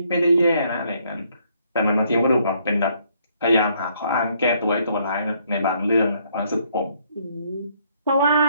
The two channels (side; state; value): both; inverted; correlation -0.68